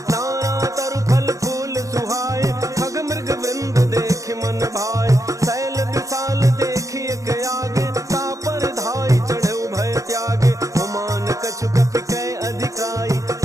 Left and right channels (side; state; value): left; late; 0.16 ms